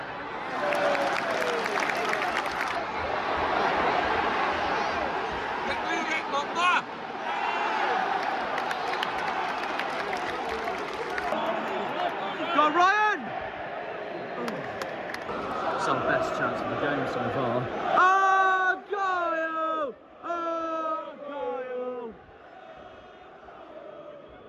Go on, Ryan! It's our best chance of the game so far. Oh, Argyle! Oh, Argyle!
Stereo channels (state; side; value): identical; both; correlation 1.00